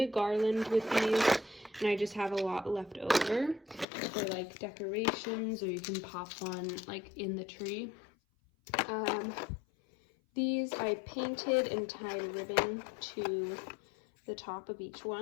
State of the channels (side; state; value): right; drops out; at 3.9 s